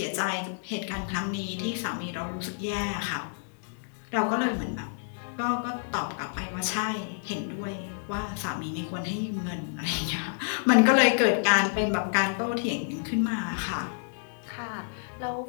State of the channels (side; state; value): right; silent; digital silence